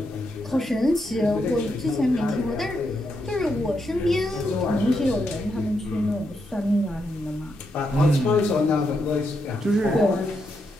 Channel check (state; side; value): normal; both; correlation 0.81